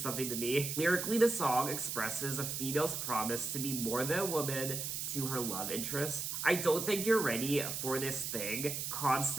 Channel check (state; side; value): noise; right; hiss, 3 dB below the sound